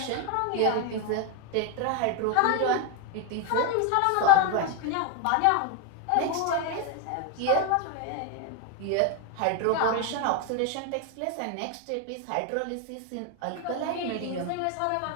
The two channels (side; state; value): both; different; correlation 0.01